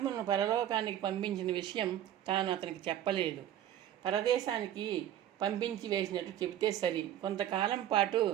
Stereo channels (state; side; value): quieter; left; 11.4 dB